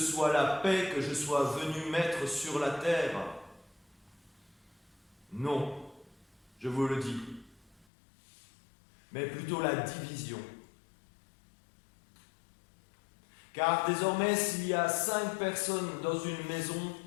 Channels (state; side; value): drops out; right; at 7.9 s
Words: la paix que je sois venu mettre sur la terre? Non. Je vous le dis, mais plutôt la division. Car désormais, s'il y a 5 personnes dans une maison,